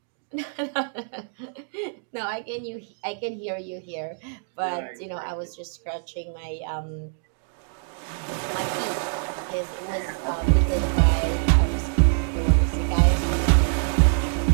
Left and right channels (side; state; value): left; silent; digital silence